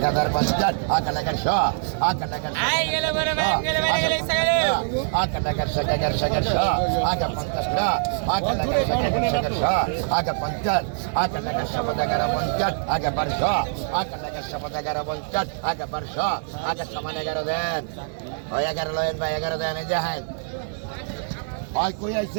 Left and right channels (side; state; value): left; silent; digital silence